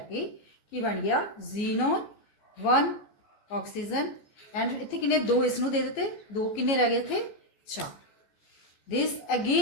ਕੇ ਕੀ ਬਣ ਗਿਆ xenon 1 ਆਕਸੀਜਨ ਐਂਡ ਇੱਥੇ ਕਿੰਨੇ 2 ਇਸ ਨੂੰ ਦੇ ਦਿੱਤੇ 2 ਕਿੰਨੇ ਰਹਿ ਗਏ ਇੱਥੇ 4. This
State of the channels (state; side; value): late; right; 14 ms